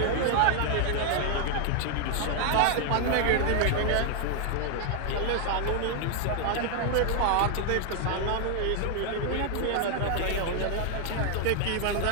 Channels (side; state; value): both; different; correlation 0.00